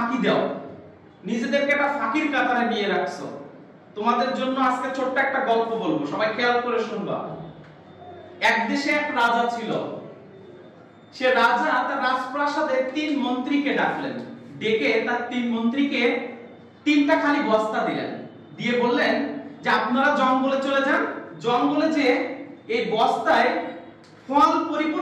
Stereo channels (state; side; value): identical; both; correlation 1.00